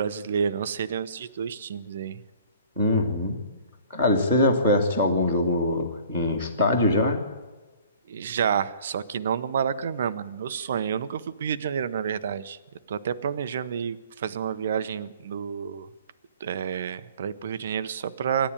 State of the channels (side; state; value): both; inverted; correlation -0.51